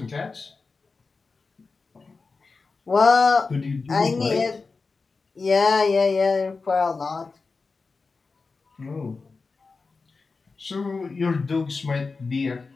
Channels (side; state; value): right; quieter; 4.2 dB